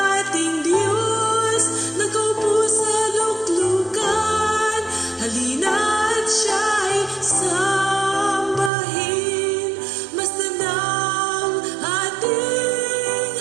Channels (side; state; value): left; drops out; at 8.7 s